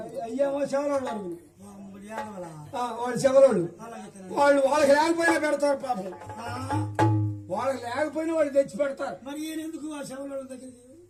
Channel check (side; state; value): both; identical; correlation 1.00